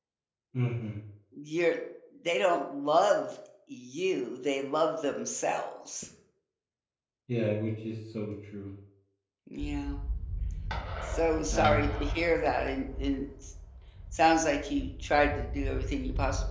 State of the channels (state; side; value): identical; both; correlation 1.00